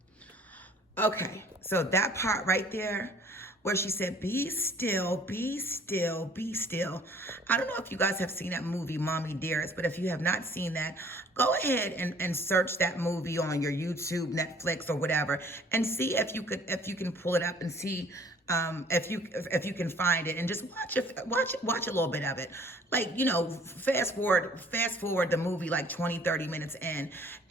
Okay, so that part right there, where she said, be still, be still, be still. I don't know if you guys have seen that movie, Mommy Dearest, but if you have not seen that, go ahead and search that movie on your YouTube, Netflix, or whatever, and see if you can pull it up and see if you can find it, and just watch a little bit of it. Like, fast forward the movie like 20-30 minutes in,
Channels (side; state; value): both; normal; correlation 0.56